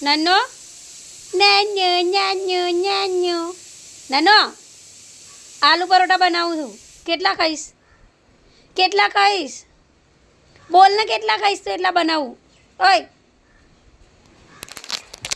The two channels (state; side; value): identical; both; correlation 1.00